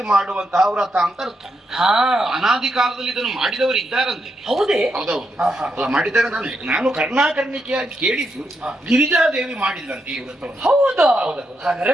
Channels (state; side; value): normal; both; correlation 0.82